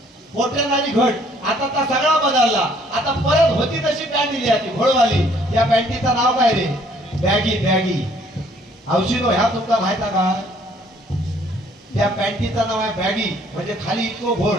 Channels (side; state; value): both; normal; correlation 0.61